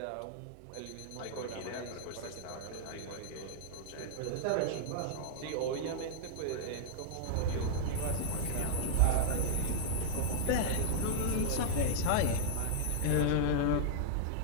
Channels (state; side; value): different; both; correlation 0.00